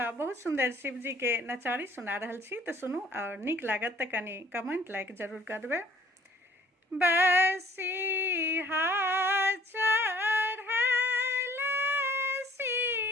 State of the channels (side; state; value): both; normal; correlation 0.56